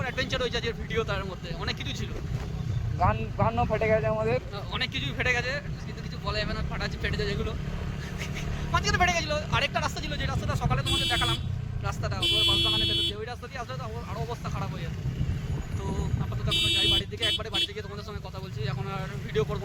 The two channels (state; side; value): identical; both; correlation 1.00